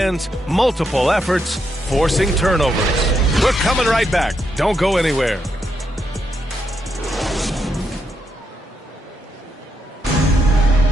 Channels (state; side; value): normal; both; correlation 0.81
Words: multiple efforts, forcing turnovers. We're coming right back. Don't go anywhere.